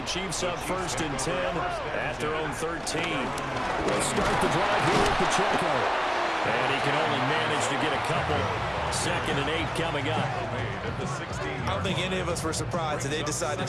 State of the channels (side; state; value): both; identical; correlation 1.00